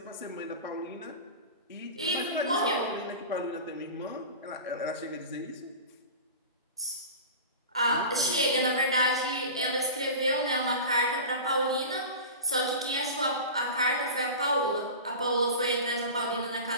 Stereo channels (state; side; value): inverted; both; correlation -0.32